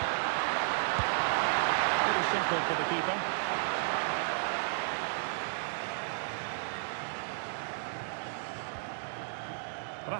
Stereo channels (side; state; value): left; silent; digital silence